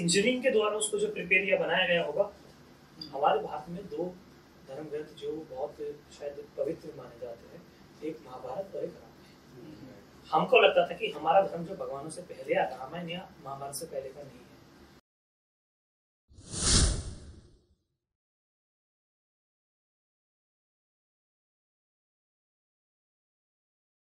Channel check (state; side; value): identical; both; correlation 1.00